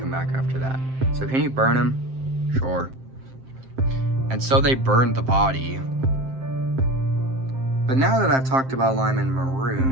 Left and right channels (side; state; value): left; late; 7.6 ms